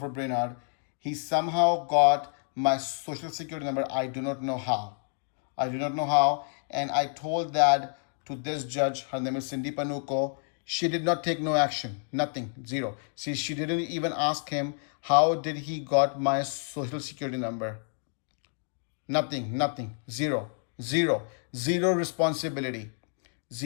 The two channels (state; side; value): silent; right; 56 dB below the other